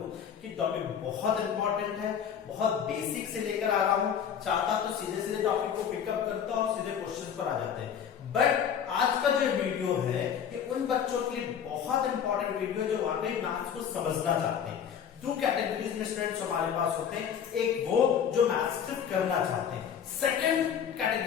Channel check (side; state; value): right; quieter; 8.2 dB